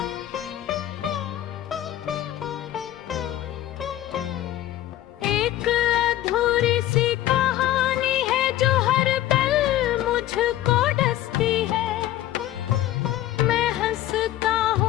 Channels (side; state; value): right; quieter; 13.8 dB